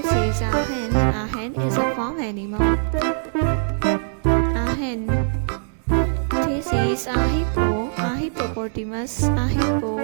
is a hen. A hen is a farm animal. A hen. This is a hippo, a hippopotamus, a hippo.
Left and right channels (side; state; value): left; silent; digital silence